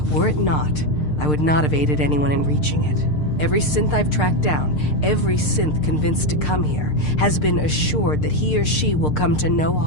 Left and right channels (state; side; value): late; right; 6.6 ms